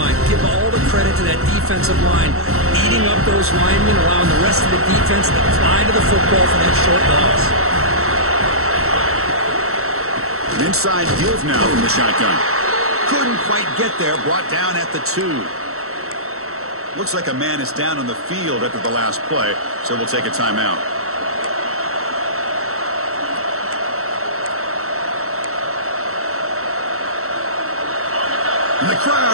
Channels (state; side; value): late; left; 0.63 ms